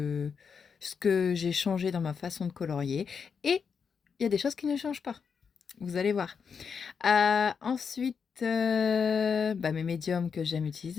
que j'ai changé dans ma façon de colorier. Et il y a des choses qui ne changent pas. Vous allez voir. Ensuite, mes médiums que j'aime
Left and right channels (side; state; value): right; quieter; 6.2 dB